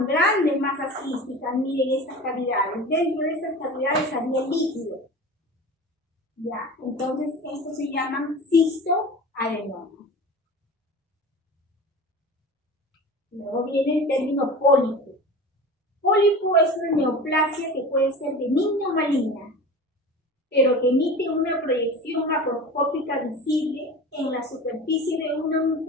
grandes masas quísticas. Miren estas cavidades. Dentro de estas cavidades había líquido. ¿Ya? Entonces, estos se llaman cistoadenomas. Luego viene el término pólipo. Pólipo es una neoplasia que puede ser benigna o maligna, pero que emite una proyección macroscópica visible en la superficie de una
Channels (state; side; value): normal; both; correlation 0.35